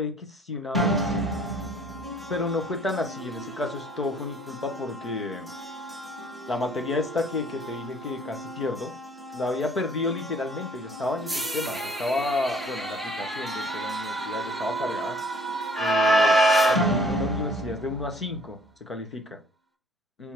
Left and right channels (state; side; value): normal; both; correlation 0.56